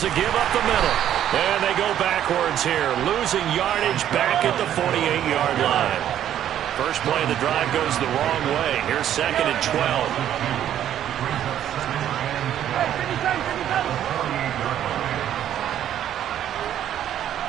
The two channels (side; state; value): left; quieter; 10.9 dB